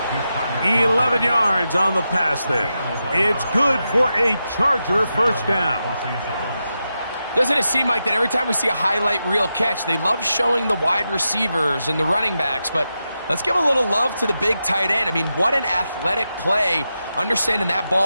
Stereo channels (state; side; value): inverted; both; correlation -0.88